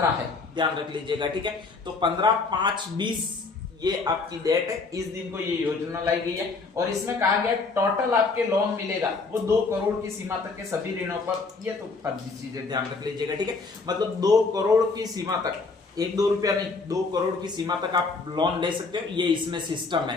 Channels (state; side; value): quieter; right; 4.1 dB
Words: है, ध्यान रख लीजिएगा, ठीक है। तो 15/5/20 ये आपकी डेट है, इस दिन को ये योजना लाई गई है। और इसमें कहा गया टोटल आपके लोन मिलेगा वो 2 करोड़ की सीमा तक के सभी ऋणों पर। ये तो फर्जी चीजें, ध्यान रख लीजिएगा, ठीक है। मतलब 2 करोड़ की सीमा तक, 1-2 रुपया नहीं, 2 करोड़ की सीमा तक आप लोन ले सकते हो। ये इसमें सिस्टम है।